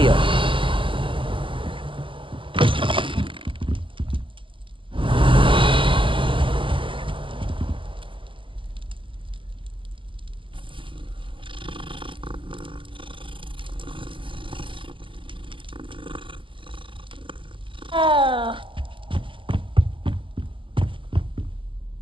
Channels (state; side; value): late; left; 0.25 ms